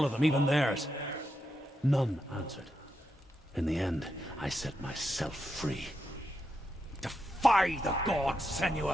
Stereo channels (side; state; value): both; normal; correlation 0.85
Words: of them, even theirs. None answered. In the end, I set myself free. Defy the gods,